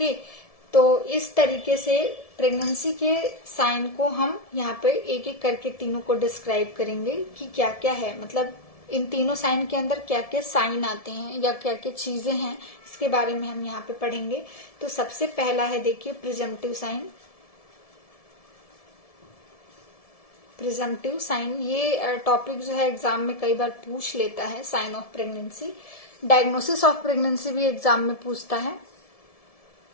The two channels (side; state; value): right; late; 1.7 ms